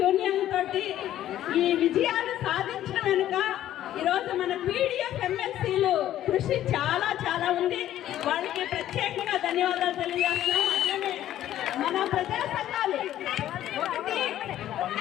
తోటి ఈ విజయాలు సాధించిన వెనుక ఈరోజు మన పీడిఎఫ్ ఎమ్మెల్సీలు కృషి చాలా చాలా ఉంది. వాళ్ళకి ప్రత్యేకంగా ధన్యవాదాలు తెలియజేస్తున్నాం. అట్లనే మన ప్రజా సంఘాలు, ఒకటి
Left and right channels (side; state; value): right; quieter; 12.5 dB